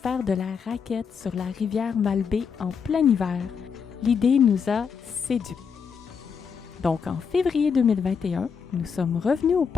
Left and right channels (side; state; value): right; quieter; 6.3 dB